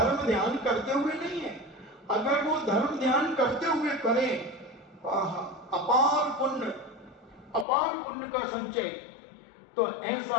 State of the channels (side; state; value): right; drops out; at 7.7 s